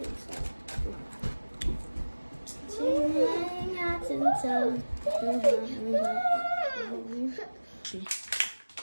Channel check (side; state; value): both; inverted; correlation -1.00